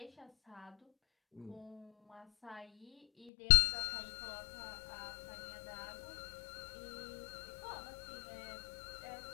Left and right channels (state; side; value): drops out; right; at 3.3 s